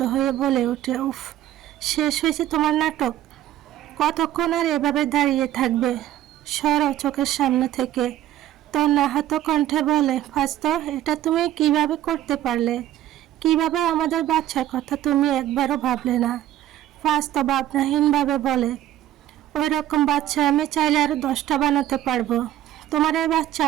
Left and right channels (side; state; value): left; quieter; 13.0 dB